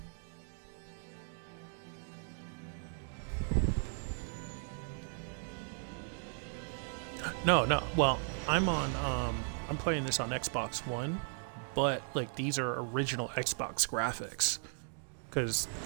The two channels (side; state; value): left; silent; 53 dB below the other